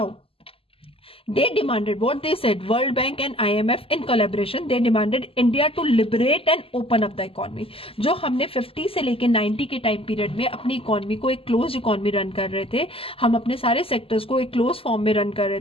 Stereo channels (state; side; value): late; right; 0.27 ms